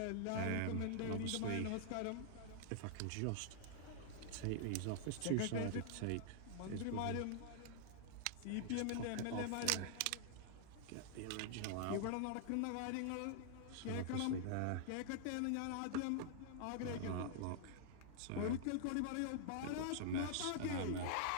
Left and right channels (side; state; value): both; different; correlation -0.01